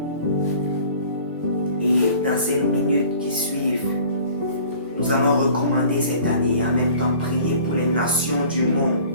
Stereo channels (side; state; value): both; inverted; correlation -0.48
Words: Et dans ces minutes qui suivent, nous allons recommander cette année et en même temps prier pour les nations du monde.